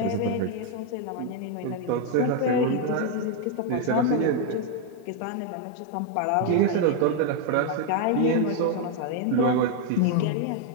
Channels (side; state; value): both; different; correlation 0.00